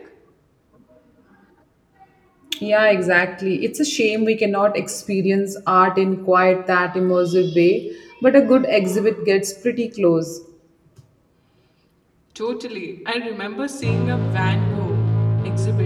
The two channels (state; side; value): identical; both; correlation 1.00